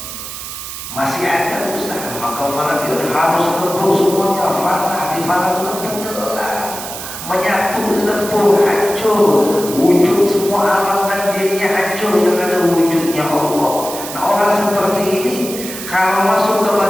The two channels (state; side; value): noise; right; hiss, 9 dB below the sound